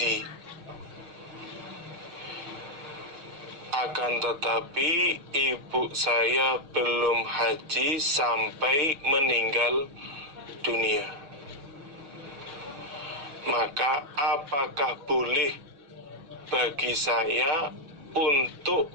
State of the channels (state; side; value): late; left; 6.3 ms